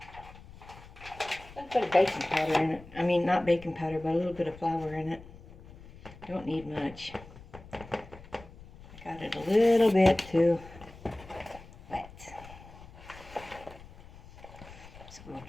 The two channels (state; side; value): noise; left; rumble, 19 dB below the sound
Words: put a baking powder in it. I mean, not baking powder, but a little bit of flour in it. Don't need much. I got it a little bit too wet. So we'll